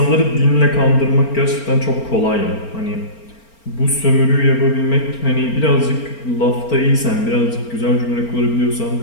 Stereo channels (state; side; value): late; right; 4.4 ms